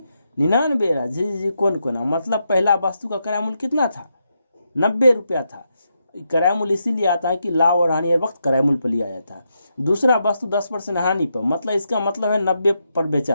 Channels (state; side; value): inverted; both; correlation -0.83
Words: 99 रहा जी कोना, मतलब पहला वस्तु का क्रय मूल्य कितना था? 90 रुपया था। क्रय मूल्य इसीलिए आता है कि लाभ और हानि हर वक्त क्रय मूल्य पर लिया जाता है। दूसरा वस्तु 10% हानि पर, मतलब इसका मतलब है 90 पर बेचा